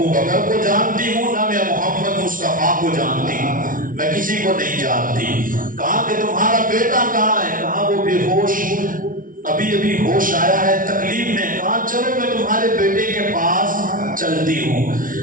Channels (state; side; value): late; left; 0.39 ms